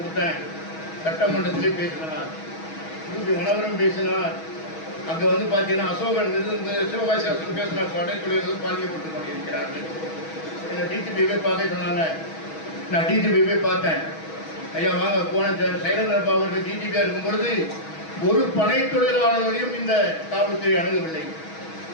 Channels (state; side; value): late; right; 6.2 ms